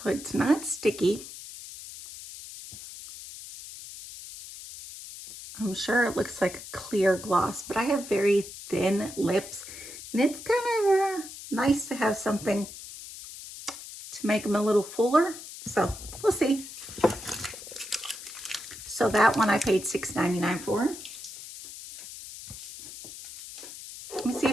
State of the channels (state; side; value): noise; left; hiss, 13 dB below the sound